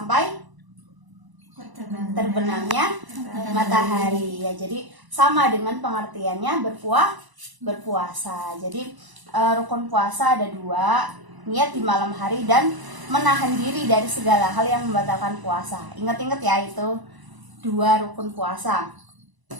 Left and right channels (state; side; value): late; left; 1.0 ms